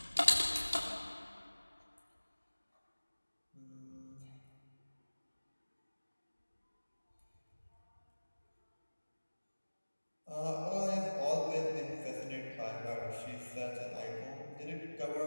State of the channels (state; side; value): inverted; both; correlation -1.00